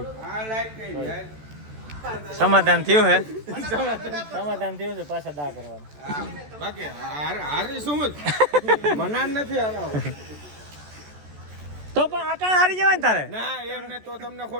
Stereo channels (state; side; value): late; left; 14 ms